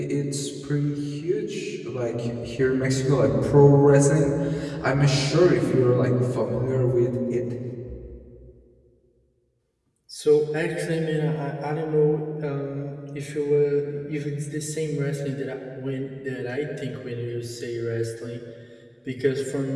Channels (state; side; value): identical; both; correlation 1.00